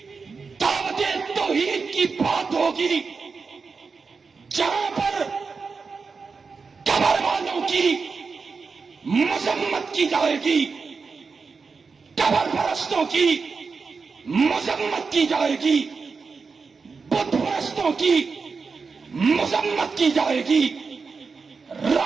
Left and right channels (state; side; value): quieter; left; 4.8 dB